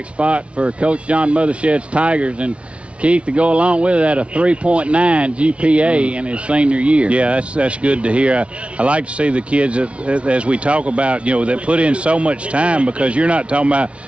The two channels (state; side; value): late; left; 0.061 ms